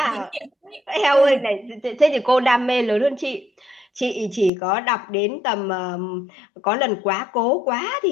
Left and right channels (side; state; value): right; drops out; at 4.5 s